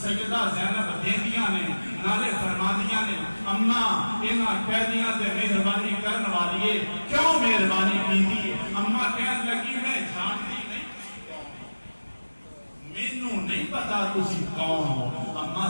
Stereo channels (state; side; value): inverted; both; correlation -1.00